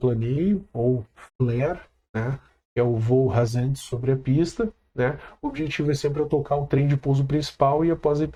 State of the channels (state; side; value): identical; both; correlation 1.00